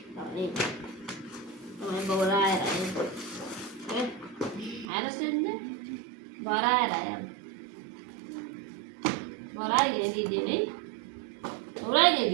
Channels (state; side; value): drops out; left; at 4.9 s